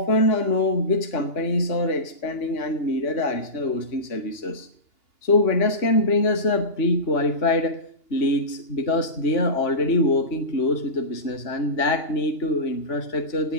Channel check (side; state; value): right; late; 2.8 ms